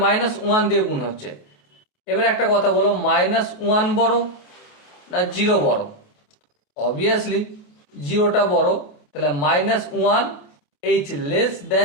-1 দিয়ে গুণ হচ্ছে। এবার একটা কথা বলো, -1 বড় না 0 বড়? অবভিয়াসলি 0টা বড়। তাহলে -1 h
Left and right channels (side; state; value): right; late; 28 ms